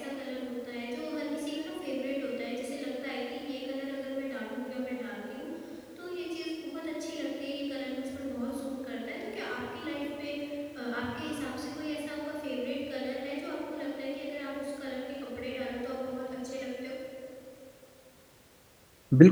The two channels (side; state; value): both; identical; correlation 1.00